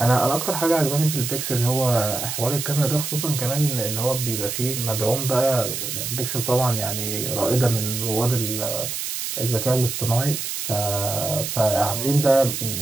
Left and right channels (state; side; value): noise; right; hiss, 4 dB below the sound